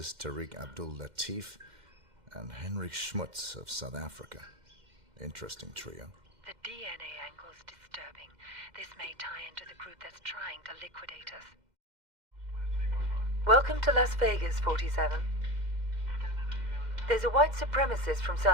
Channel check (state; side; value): late; left; 2.1 ms